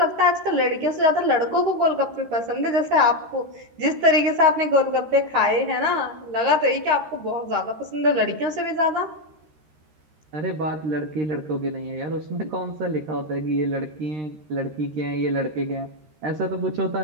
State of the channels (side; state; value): left; late; 13 ms